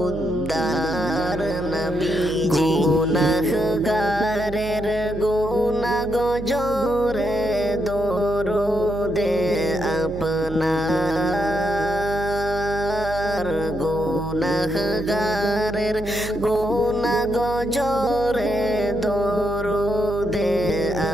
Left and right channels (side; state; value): right; noise; hum, 11 dB below the sound